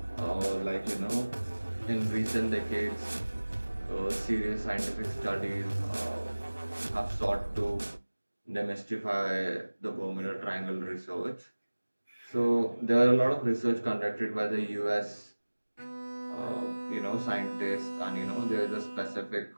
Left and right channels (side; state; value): both; inverted; correlation -1.00